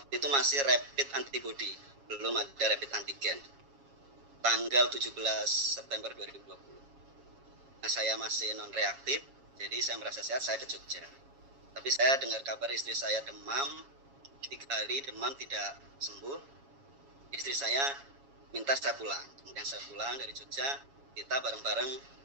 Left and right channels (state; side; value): late; left; 7.2 ms